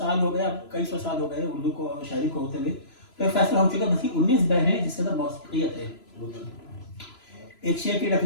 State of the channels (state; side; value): late; right; 3.0 ms